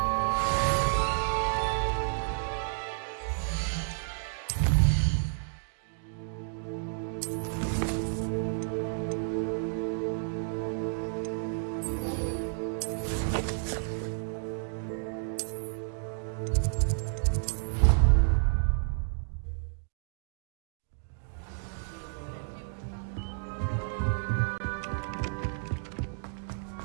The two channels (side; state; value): left; silent; digital silence